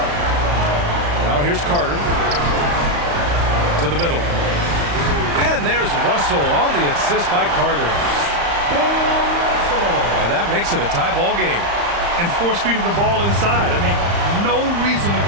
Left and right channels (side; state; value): left; late; 35 ms